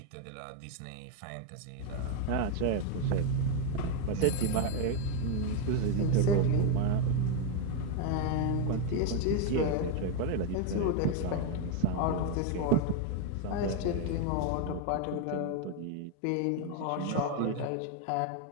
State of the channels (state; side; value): different; both; correlation 0.01